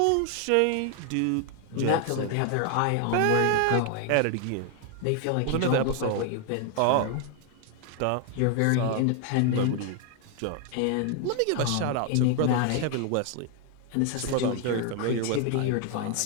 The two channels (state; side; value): different; both; correlation 0.00